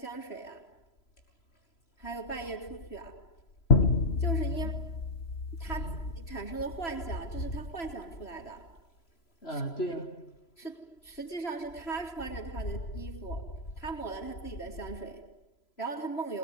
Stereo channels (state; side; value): late; right; 3.0 ms